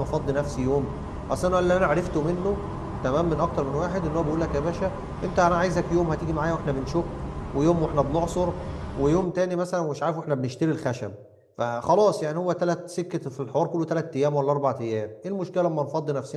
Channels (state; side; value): identical; both; correlation 1.00